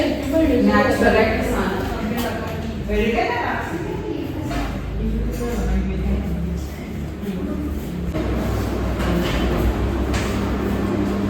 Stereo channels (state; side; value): identical; both; correlation 1.00